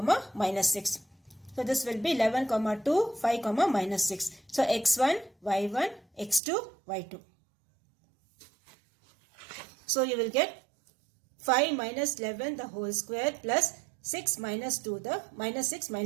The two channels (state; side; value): drops out; left; at 6.4 s